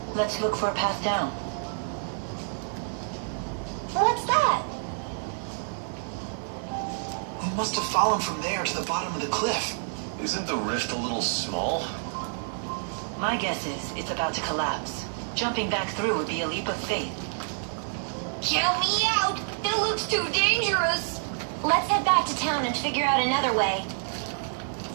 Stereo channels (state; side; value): silent; left; digital silence